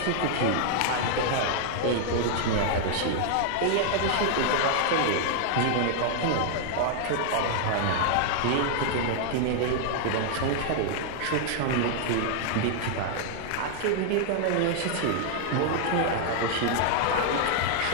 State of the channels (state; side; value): different; both; correlation 0.00